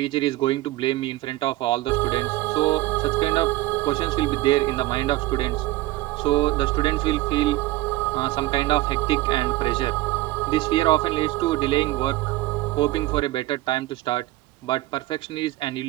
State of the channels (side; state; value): left; quieter; 18.0 dB